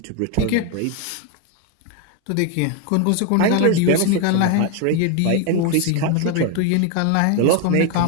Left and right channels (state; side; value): different; both; correlation 0.01